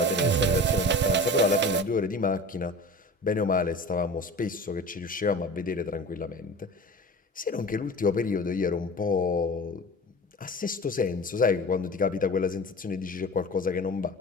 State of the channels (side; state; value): both; normal; correlation 0.36